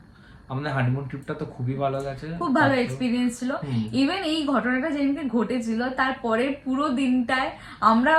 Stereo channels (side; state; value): both; identical; correlation 1.00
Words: আমাদের হানিমুন ট্রিপটা তো খুবই ভালো গেছে, খুব ভালো এক্সপিরিয়েন্স ছিল। ইভেন এই ঘটনাটা যেদিনকে ঘটেছিল তারপরে পুরো দিনটায় আমরা